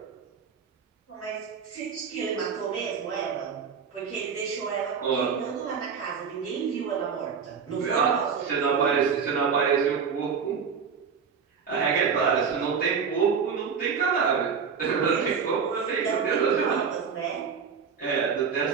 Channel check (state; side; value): quieter; left; 6.3 dB